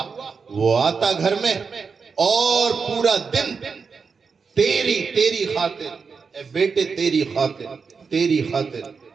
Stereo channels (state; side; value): quieter; left; 5.3 dB